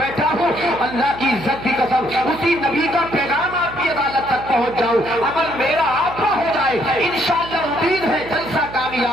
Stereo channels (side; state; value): right; noise; hum, 15 dB below the sound